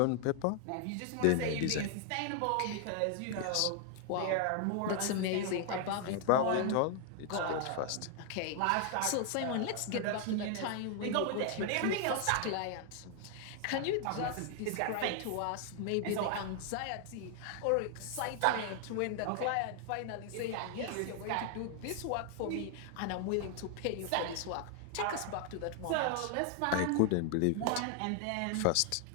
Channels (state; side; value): different; both; correlation 0.00